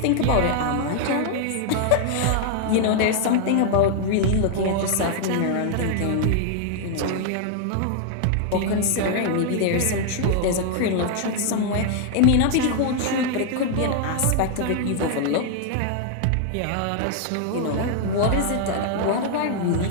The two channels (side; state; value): both; different; correlation 0.00